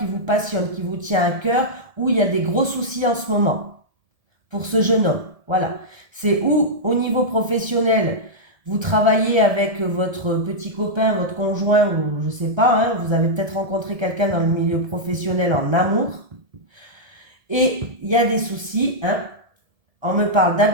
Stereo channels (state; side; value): late; left; 1.7 ms